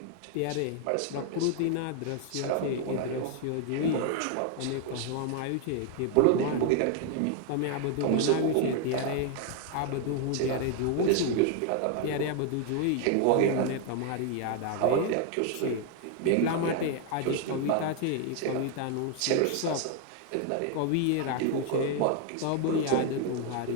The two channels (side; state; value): both; different; correlation 0.01